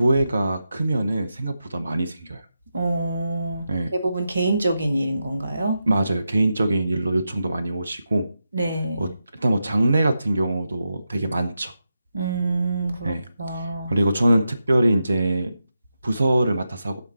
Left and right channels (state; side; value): inverted; both; correlation -0.88